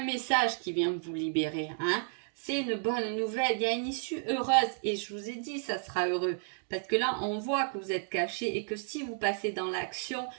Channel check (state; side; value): silent; left; 56 dB below the other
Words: message qui vient vous libérer. C'est une bonne nouvelle, il y a une issue heureuse et je vous ai dit ça sera heureux parce que là on voit que vous êtes caché et que si vous passez dans l'action,